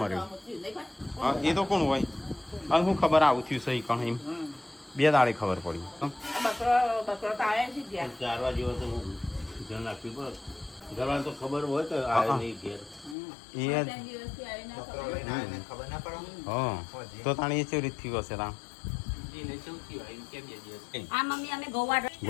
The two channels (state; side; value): drops out; right; at 13.2 s